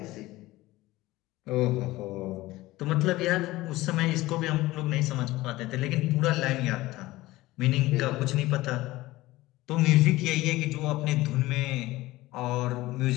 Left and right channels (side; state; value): right; quieter; 18.3 dB